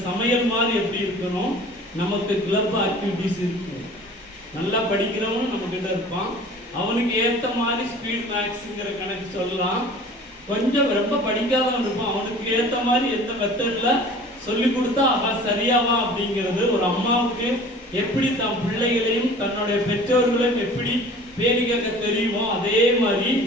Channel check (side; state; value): both; normal; correlation 0.45